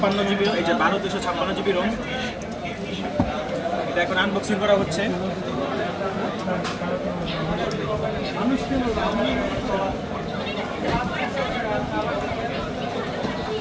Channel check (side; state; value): both; identical; correlation 1.00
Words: GB, এই যে 12/256 জিবি রোম। এটা এখন আনবক্সিং করা হচ্ছে।